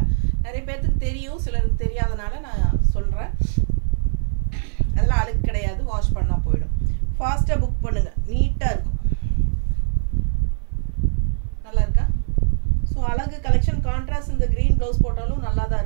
நிறைய பேர்த்துக்கு தெரியும், சிலருக்கு தெரியாதனால நான் சொல்கிறேன். அதெல்லாம் அழுக்கு கிடையாது, வாஷ் பண்ணால் போயிடும். ஃபாஸ்ட்டாக புக் பண்ணுங்கள். நீட்டாக இருக்கும். நல்லா இருக்கா? ஸோ அழகு கலெக்ஷன். கான்ட்ராஸ்ட் இந்த க்ரீன் ப்ளவுஸ் போட்டாலும் நல்லா தான்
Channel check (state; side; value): silent; left; 60 dB below the other